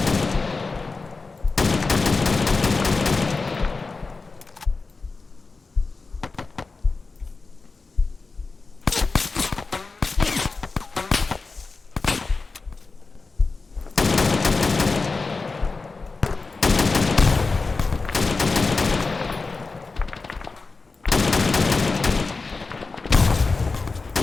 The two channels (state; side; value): quieter; right; 4.0 dB